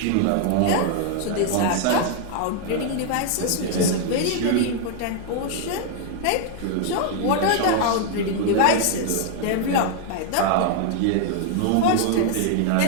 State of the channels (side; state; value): both; different; correlation 0.00